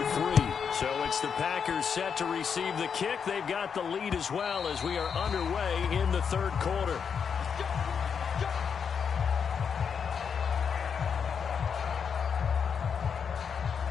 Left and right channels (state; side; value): quieter; right; 6.7 dB